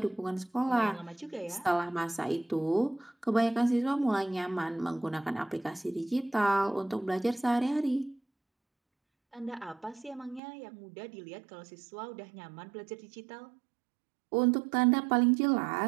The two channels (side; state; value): left; drops out; at 10.4 s